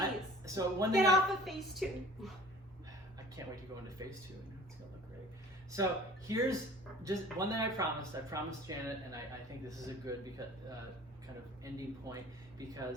So one thing. Get off of phase 2. I can't wait to go into phase 2. It's gonna look great. So here's just one thing I promised. I promised Janet, and I think this is a good kind of ending point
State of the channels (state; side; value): normal; both; correlation 0.45